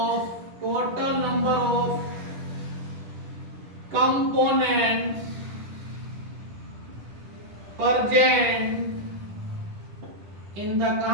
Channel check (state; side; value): late; left; 10 ms